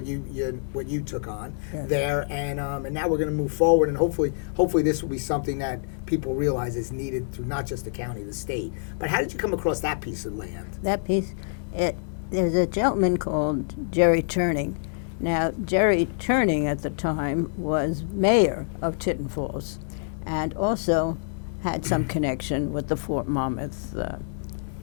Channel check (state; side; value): silent; right; digital silence